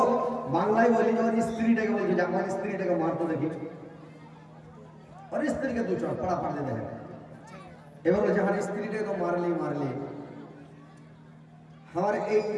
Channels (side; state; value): both; identical; correlation 1.00